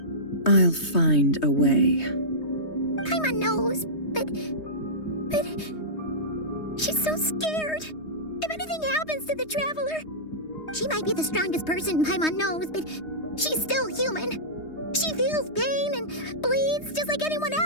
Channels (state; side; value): late; right; 3.2 ms